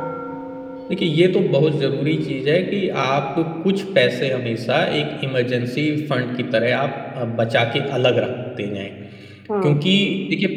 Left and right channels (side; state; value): both; identical; correlation 1.00